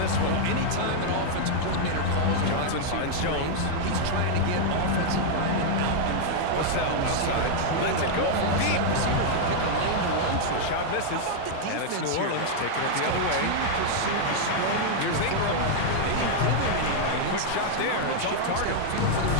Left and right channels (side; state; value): both; different; correlation -0.01